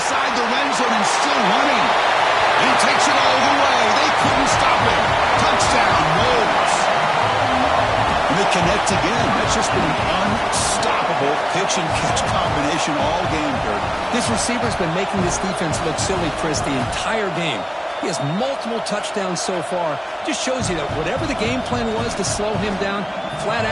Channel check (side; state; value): both; identical; correlation 1.00